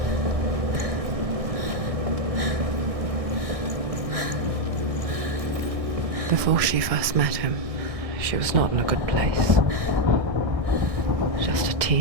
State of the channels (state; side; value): late; left; 1.6 ms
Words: Before she first met him, she was not in a good place. Just a